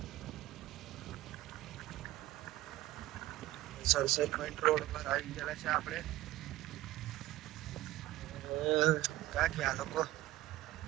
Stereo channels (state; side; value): quieter; left; 16.3 dB